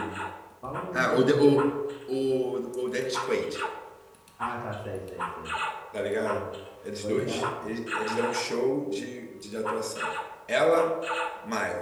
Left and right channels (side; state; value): both; identical; correlation 1.00